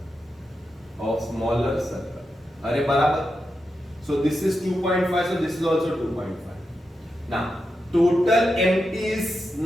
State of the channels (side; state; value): both; normal; correlation 0.87